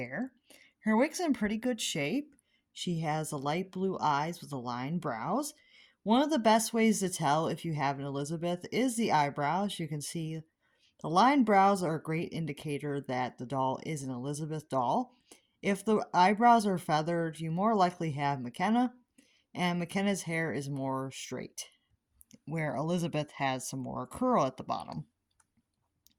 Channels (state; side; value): identical; both; correlation 1.00